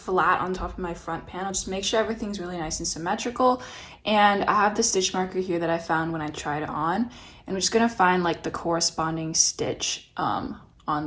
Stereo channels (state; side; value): identical; both; correlation 1.00